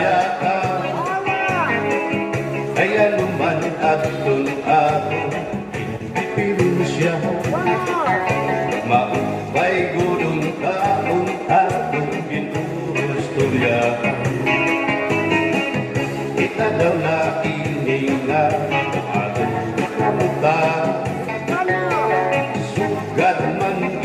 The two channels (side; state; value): both; identical; correlation 1.00